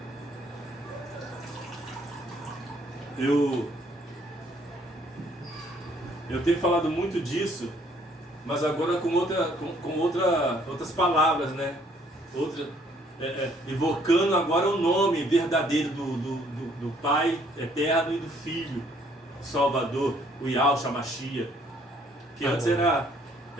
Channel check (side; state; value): both; normal; correlation 0.64